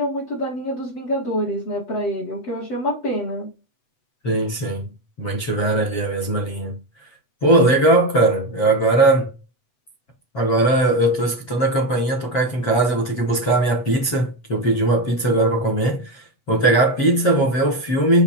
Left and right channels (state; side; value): late; right; 8.0 ms